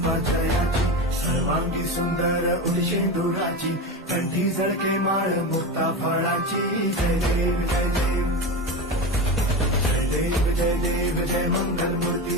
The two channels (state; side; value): normal; both; correlation 0.22